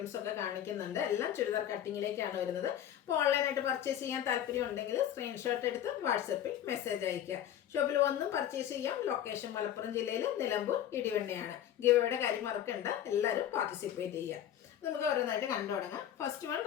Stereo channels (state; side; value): quieter; right; 10.8 dB